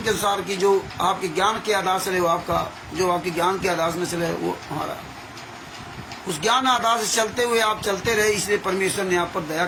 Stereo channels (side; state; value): both; identical; correlation 1.00